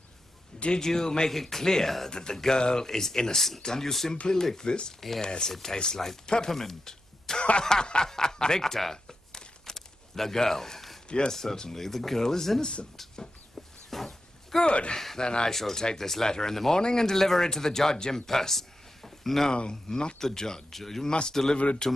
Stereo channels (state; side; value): normal; both; correlation 0.89